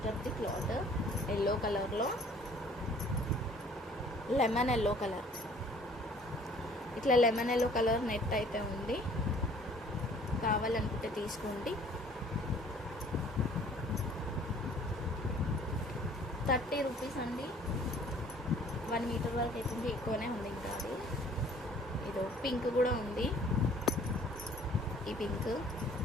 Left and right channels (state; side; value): normal; both; correlation 0.54